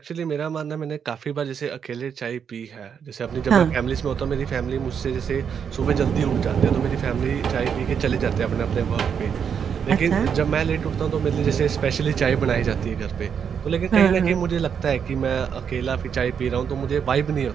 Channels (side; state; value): left; quieter; 7.4 dB